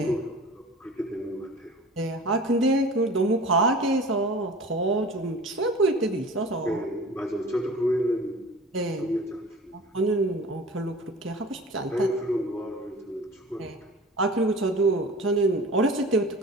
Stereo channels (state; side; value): normal; both; correlation 0.40